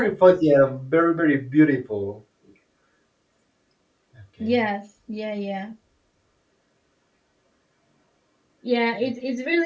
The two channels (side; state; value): both; identical; correlation 1.00